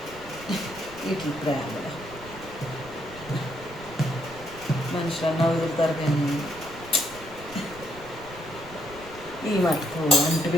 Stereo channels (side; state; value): right; noise; rumble, 18 dB below the sound